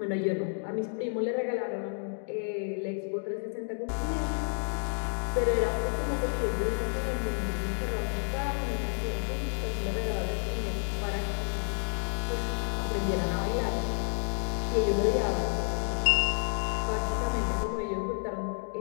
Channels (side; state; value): right; silent; 57 dB below the other